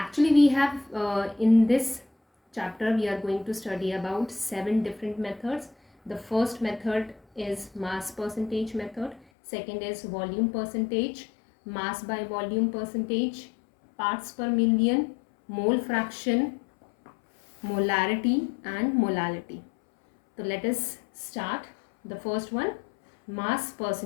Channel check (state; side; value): drops out; right; at 9.2 s